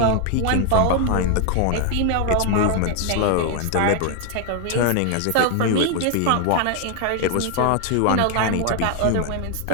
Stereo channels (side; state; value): both; different; correlation 0.01